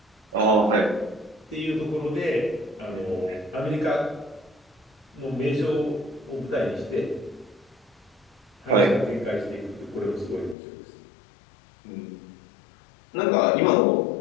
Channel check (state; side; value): drops out; right; at 10.6 s